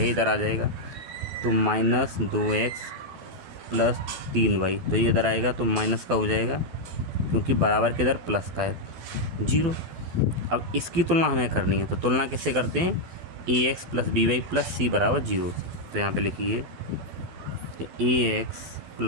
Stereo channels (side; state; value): left; late; 12 ms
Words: इधर आ जाएगा, तो -2x + 3y, तो ये इधर आएगा तो माइनस का हो जाएगा क्योंकि बराबर के इधर प्लस का है 0। अब इसकी तुलना हमें करनी है, तो तुलना किससे करते हैं, ax + by + c बराबर 0। तो यहाँ पे लिखिए तो ax